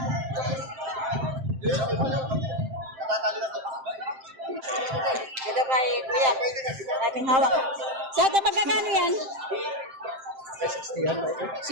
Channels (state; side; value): late; left; 7.6 ms